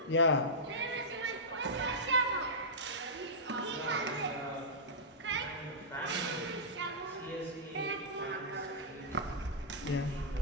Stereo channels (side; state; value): both; normal; correlation -0.12